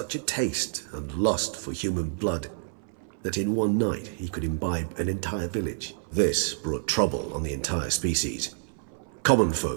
a taste and lust for human blood that in one night he could imbibe an entire village. This brought trouble on the entire species. Common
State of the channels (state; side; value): silent; left; 57 dB below the other